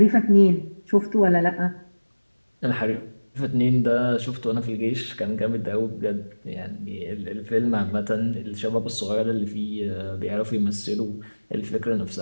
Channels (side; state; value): both; inverted; correlation -1.00